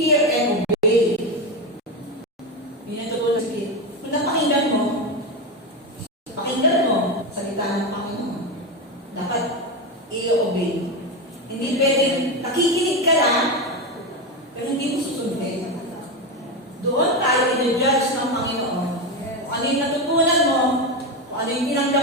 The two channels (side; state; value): both; normal; correlation 0.14